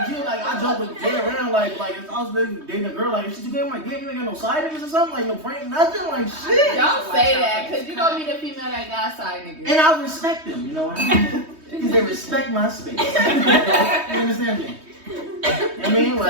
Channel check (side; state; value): left; late; 3.2 ms